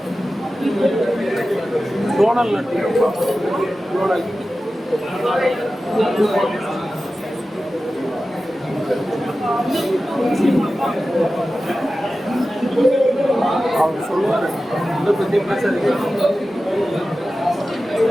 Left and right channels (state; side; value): normal; both; correlation 0.94